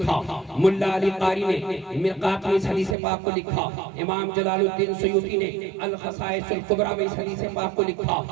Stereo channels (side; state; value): left; drops out; at 3.0 s